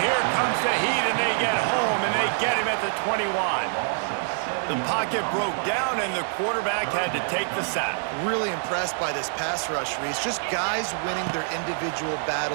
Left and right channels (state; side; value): silent; left; 57 dB below the other